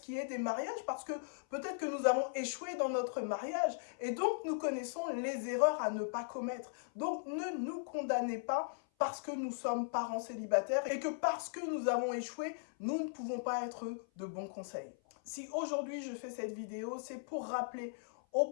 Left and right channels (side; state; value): right; silent; 52 dB below the other